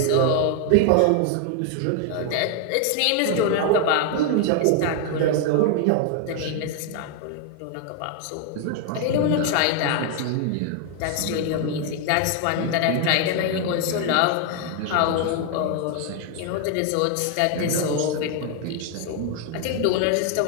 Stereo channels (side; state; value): both; different; correlation 0.00